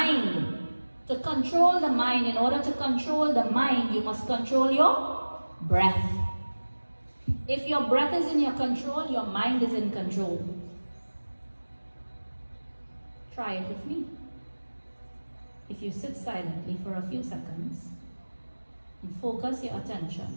to control the mind, in order to control the mind, you must control your breath. If your breath is in your control, your mind is in control. Try it with me. If you sit silently for a few seconds and focus your attention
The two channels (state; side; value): inverted; both; correlation -1.00